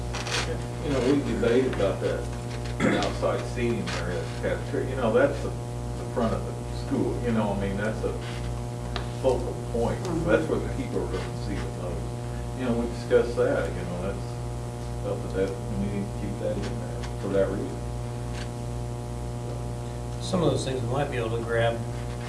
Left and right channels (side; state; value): both; identical; correlation 1.00